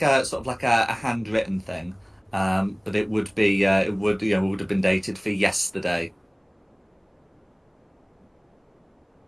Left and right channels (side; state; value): both; identical; correlation 1.00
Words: a sort of like a handwritten thing, but it would be it would have been dated for yesterday.